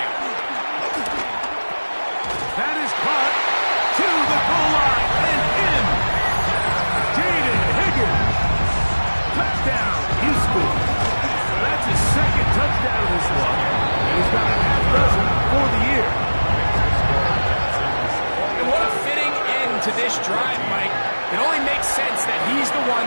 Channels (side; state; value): both; inverted; correlation -1.00